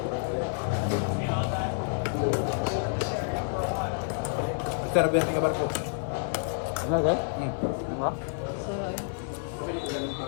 Sarap yan nga barko. Ano ba?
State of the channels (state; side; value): silent; right; 59 dB below the other